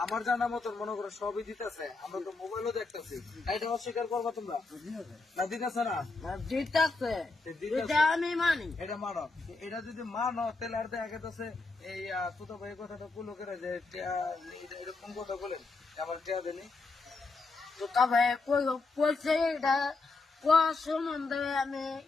আমার জানা মতন মনে করো সবই দিতেছে। আমরা তো মোবাইলও দেখতেছি, এটা অস্বীকার করবা তোমরা না? দিতেছে না? দিতেছে, এটা আমি মানি। এটা মানো, এটা যদি মানো তাহলে আর দেখা গেছে এই তুতো ভাই কথাটা পুলো করে যে এরকম কথা বলেন আমার টেয়া দেনি। তো তবে কইছে এটা সম্বন্ধে আমি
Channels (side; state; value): right; quieter; 3.8 dB